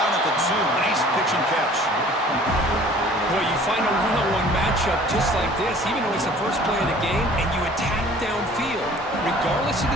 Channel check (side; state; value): both; normal; correlation 0.50